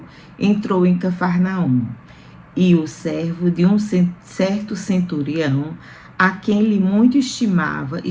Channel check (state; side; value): identical; both; correlation 1.00